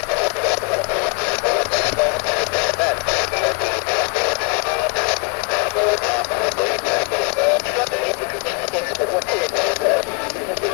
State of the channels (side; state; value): right; quieter; 35.4 dB